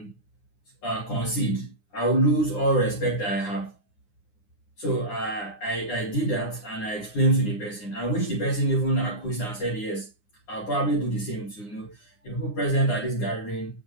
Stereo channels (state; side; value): late; right; 9.7 ms